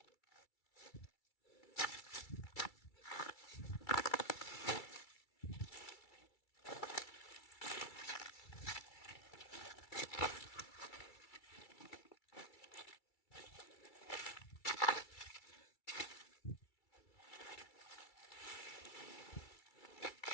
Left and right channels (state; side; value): late; right; 2.3 ms